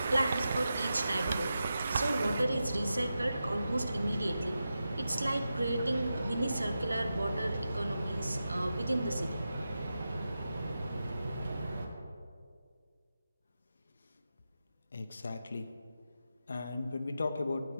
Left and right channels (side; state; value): both; inverted; correlation -0.90